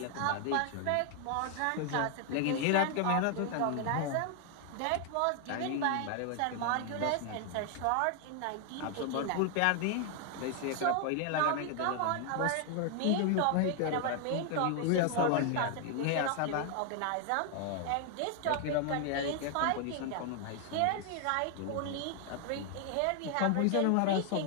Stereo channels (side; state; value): both; different; correlation 0.00